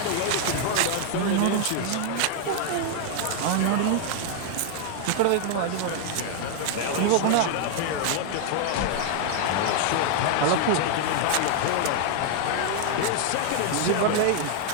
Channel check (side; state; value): both; different; correlation 0.00